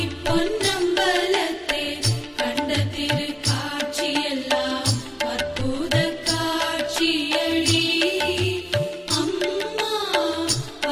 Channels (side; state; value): both; identical; correlation 1.00